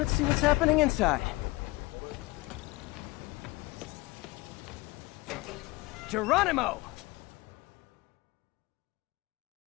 see what's happening inside. Geronimo!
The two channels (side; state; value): right; quieter; 21.9 dB